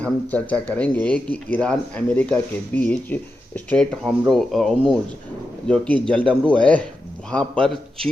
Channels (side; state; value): both; normal; correlation 0.89